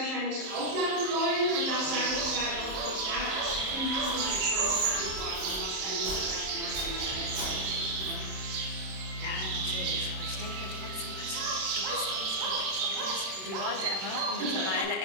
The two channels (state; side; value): late; left; 27 ms